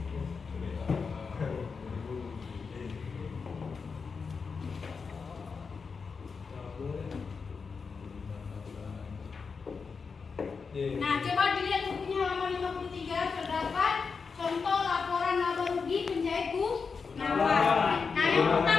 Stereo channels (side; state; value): right; quieter; 5.2 dB